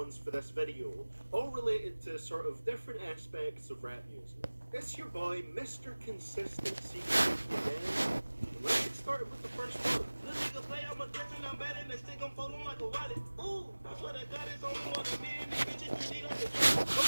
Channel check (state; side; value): inverted; both; correlation -1.00